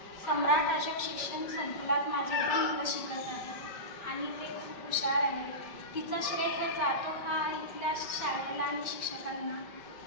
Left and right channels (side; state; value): right; late; 5.1 ms